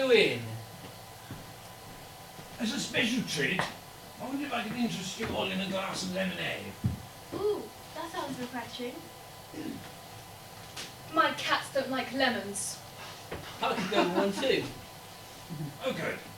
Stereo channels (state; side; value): identical; both; correlation 1.00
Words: As a special treat, I wonder if I could interest you all in a glass of lemonade. Ooh, that sounds refreshing. lemons. I could go with one too. Oh, good.